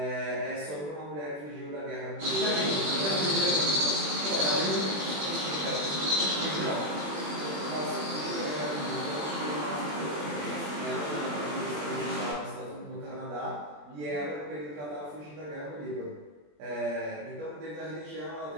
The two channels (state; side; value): late; left; 20 ms